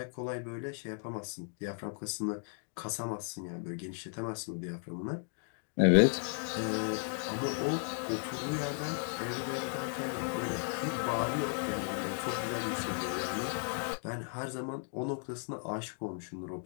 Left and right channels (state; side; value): silent; right; 54 dB below the other